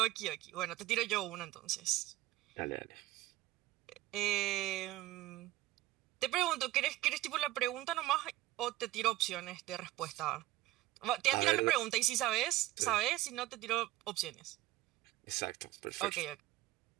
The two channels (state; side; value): quieter; left; 16.1 dB